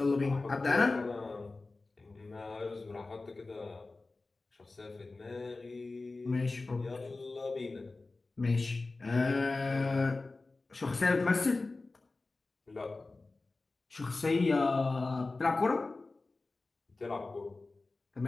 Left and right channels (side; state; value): right; quieter; 3.4 dB